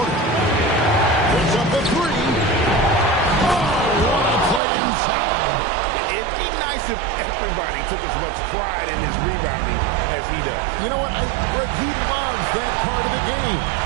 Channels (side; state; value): left; drops out; at 4.6 s